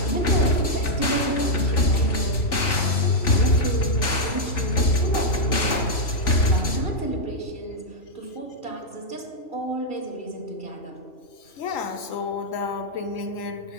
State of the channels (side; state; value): right; late; 3.5 ms